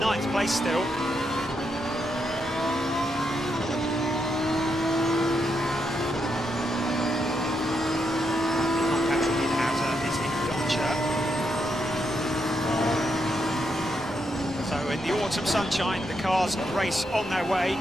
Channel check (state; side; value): normal; both; correlation 0.81